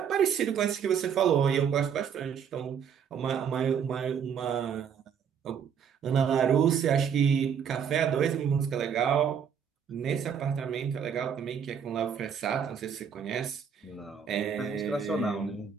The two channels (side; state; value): left; quieter; 7.5 dB